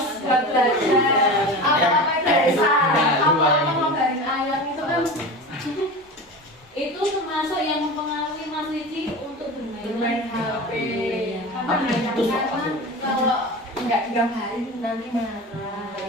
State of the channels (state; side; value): normal; both; correlation 0.30